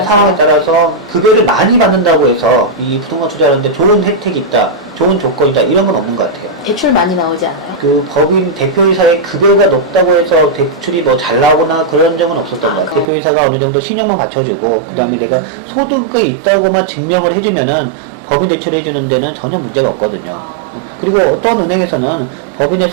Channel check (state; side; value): drops out; left; at 13.1 s